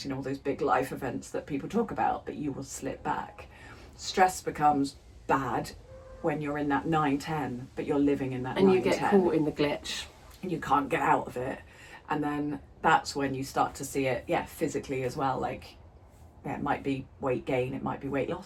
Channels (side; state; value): both; identical; correlation 1.00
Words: All those big life events that people talk about. But you will slip back. Stress becomes bad when you're in that 9-10, but you're living in that 9-10. And you get caught in the glitch. And you can't get out of it. And then that's when you start to see it, physically as well. Like, it might be weight gain, it might be weight